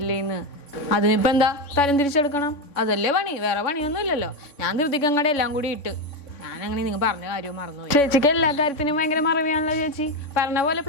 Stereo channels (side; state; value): right; late; 3.5 ms